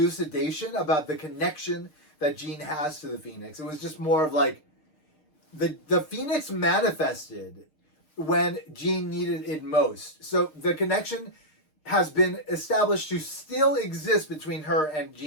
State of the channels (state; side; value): late; right; 6.5 ms